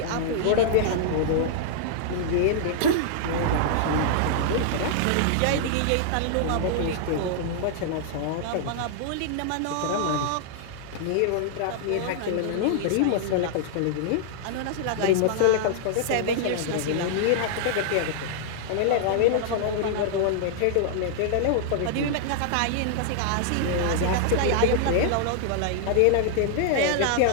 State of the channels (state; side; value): different; both; correlation -0.01